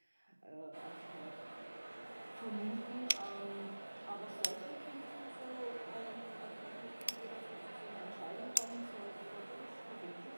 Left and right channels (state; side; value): inverted; both; correlation -1.00